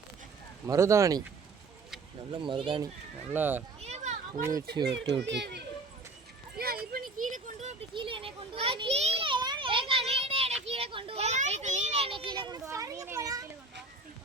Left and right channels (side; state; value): left; quieter; 3.4 dB